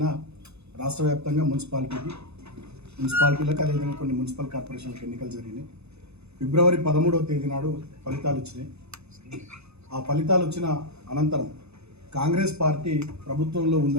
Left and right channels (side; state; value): left; late; 0.80 ms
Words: రాష్ట్ర వ్యాప్తంగా మున్సిపాలిటీలకు అదేవిధంగా కొన్ని మున్సిపల్ కార్పొరేషన్లకు ఎన్నికలు జరిగినాయి. ఫిబ్రవరి 13వ తేదీ నాడు ఫలితాలు వచ్చినాయి. ఆ ఫలితాలు వచ్చిన అనంతరం కాంగ్రెస్ పార్టీ ప్రభుత్వంలో